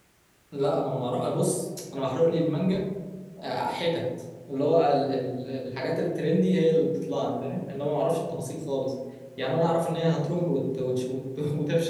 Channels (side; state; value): both; identical; correlation 1.00